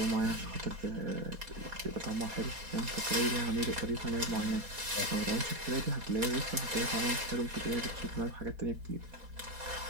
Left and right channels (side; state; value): left; late; 4.2 ms